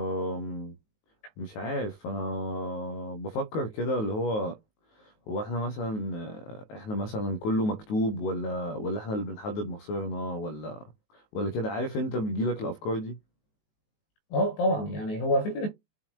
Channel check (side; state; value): right; late; 19 ms